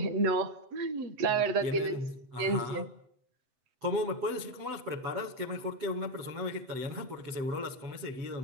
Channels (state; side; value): late; left; 7.9 ms